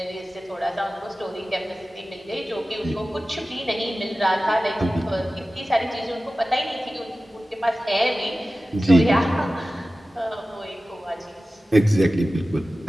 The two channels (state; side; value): normal; both; correlation 0.96